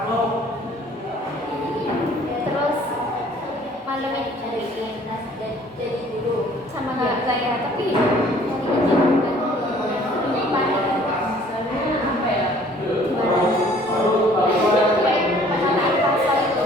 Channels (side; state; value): both; normal; correlation 0.55